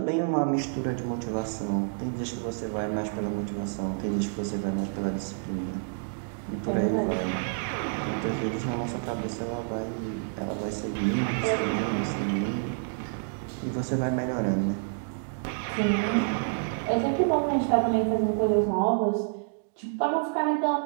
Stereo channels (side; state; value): left; silent; digital silence